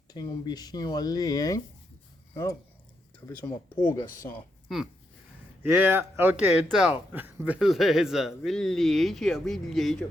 Tem um bichinho ali, hein? Oh, talvez uma pulga só. Ok, então. Beleza.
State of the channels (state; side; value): normal; both; correlation 0.81